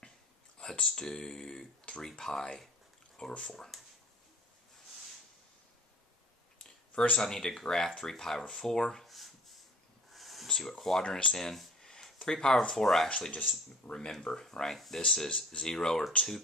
Let's do 3 pi over 4. First I need to graph 3 pi over 4. See what quadrant it's in. 3 pi over 4 I actually just remember, right? This is 0 or 2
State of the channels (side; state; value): both; normal; correlation 0.48